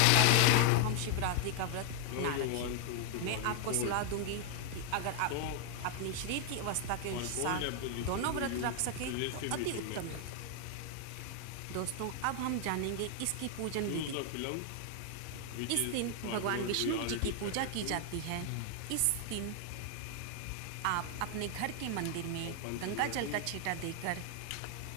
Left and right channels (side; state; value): both; different; correlation 0.00